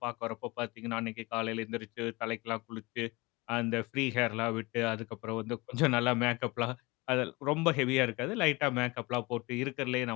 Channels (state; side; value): quieter; right; 24.1 dB